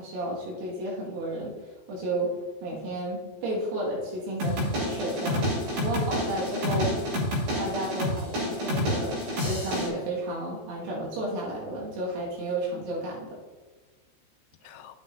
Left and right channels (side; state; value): left; late; 15 ms